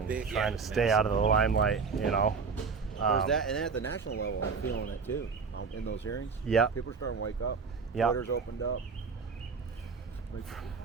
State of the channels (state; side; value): quieter; left; 5.2 dB